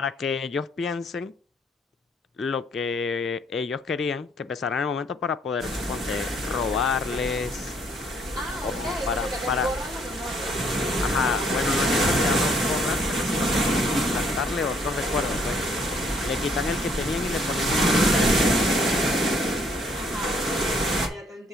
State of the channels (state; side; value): normal; both; correlation 0.66